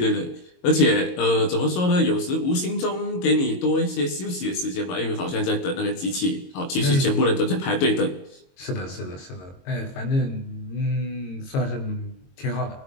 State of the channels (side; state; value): right; late; 22 ms